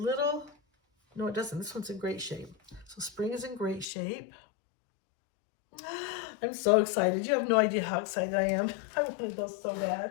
no it doesn't, this one's in great shape. So spring is in great shape. I'm so excited. You have no idea how excited I am. I wanted those so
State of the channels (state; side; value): drops out; right; at 3.9 s